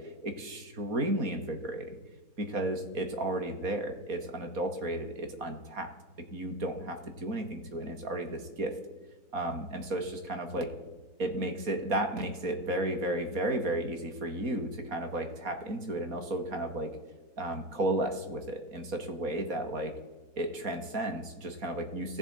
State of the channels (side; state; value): left; late; 4.2 ms